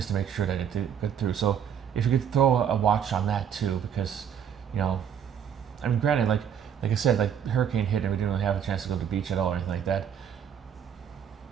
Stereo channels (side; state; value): left; quieter; 8.3 dB